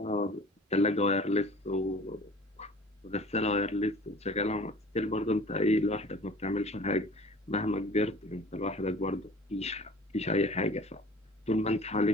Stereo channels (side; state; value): both; normal; correlation 0.46